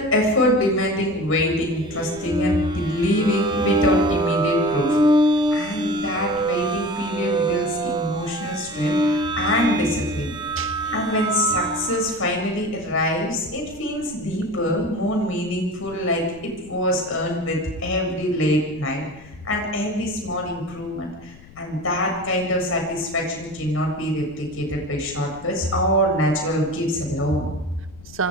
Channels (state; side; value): noise; left; rumble, 21 dB below the sound